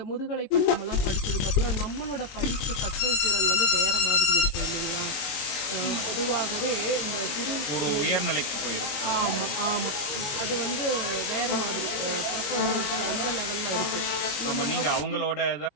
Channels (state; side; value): late; right; 22 ms